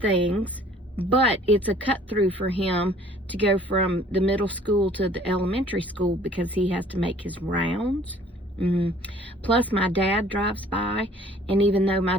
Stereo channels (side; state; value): both; normal; correlation 0.54